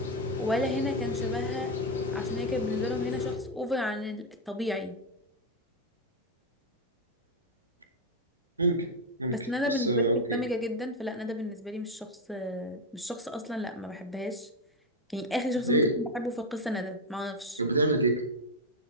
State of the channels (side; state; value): both; normal; correlation 0.06